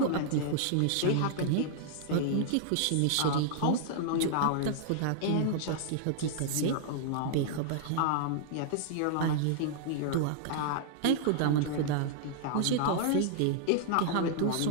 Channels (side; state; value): both; different; correlation -0.01